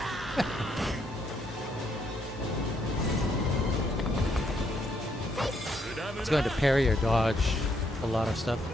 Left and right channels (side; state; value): both; normal; correlation 0.73